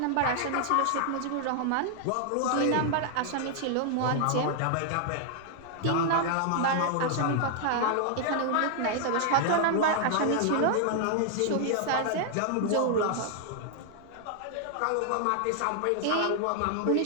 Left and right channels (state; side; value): different; both; correlation 0.00